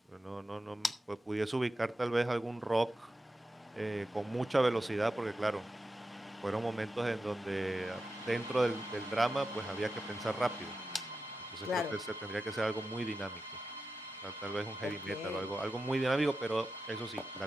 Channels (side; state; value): both; normal; correlation 0.91